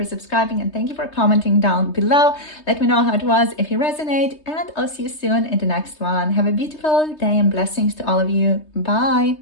subscribing, and thank you for commenting down below. Let me know how it was, if you resonate, and I'll see you soon in the next one. Have a beautiful day and blessings to all of you. Bye.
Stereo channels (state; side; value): late; right; 3.3 ms